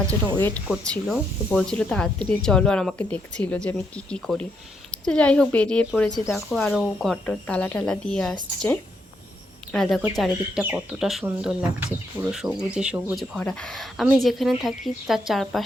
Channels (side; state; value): both; normal; correlation 0.77